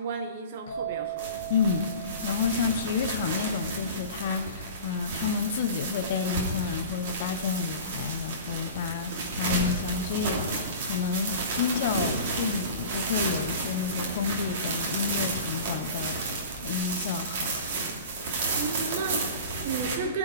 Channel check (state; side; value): inverted; both; correlation -0.37